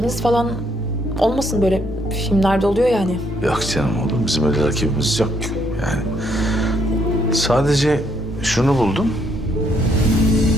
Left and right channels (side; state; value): both; normal; correlation 0.71